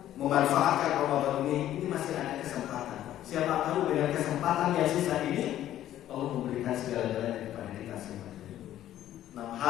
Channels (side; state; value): right; quieter; 12.5 dB